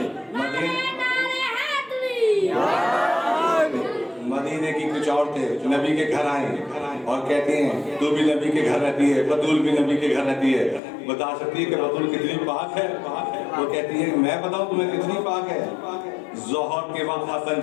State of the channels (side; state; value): right; drops out; at 10.8 s